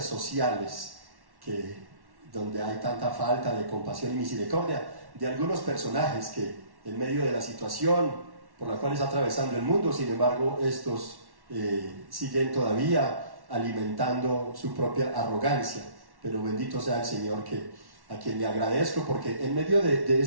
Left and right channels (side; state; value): left; late; 1.1 ms